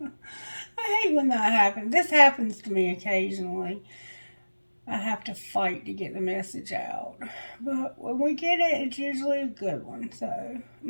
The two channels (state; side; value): inverted; both; correlation -1.00